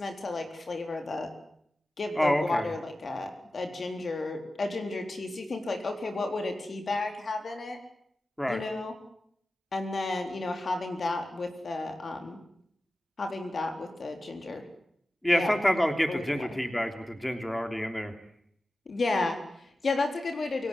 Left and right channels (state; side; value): normal; both; correlation 0.94